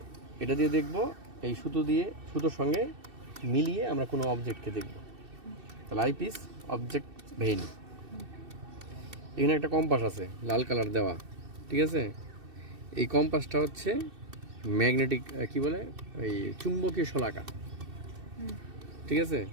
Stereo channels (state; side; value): late; left; 2.6 ms